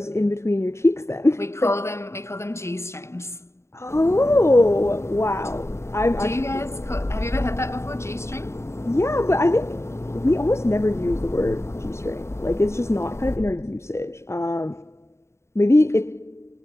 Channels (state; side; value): late; right; 0.13 ms